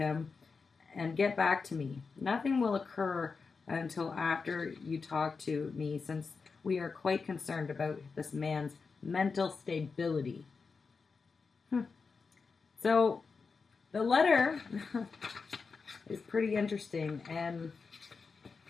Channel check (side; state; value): right; quieter; 4.9 dB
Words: and get back to me. Nothing will occur until after you talk to me, since we are quite concerned about this man's mental stability. So the letter is pretty interesting, and